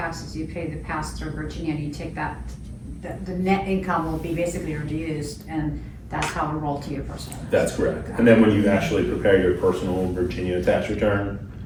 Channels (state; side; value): identical; both; correlation 1.00